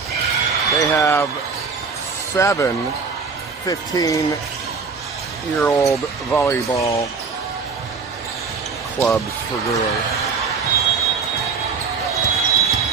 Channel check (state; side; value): quieter; left; 5.0 dB